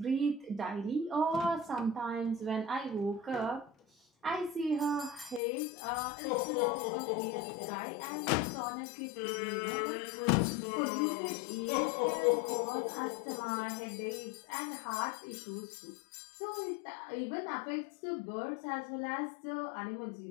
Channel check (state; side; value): drops out; right; at 5.4 s